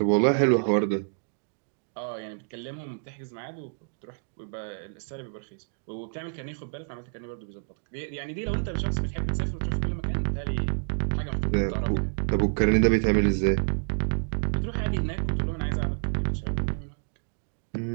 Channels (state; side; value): silent; left; digital silence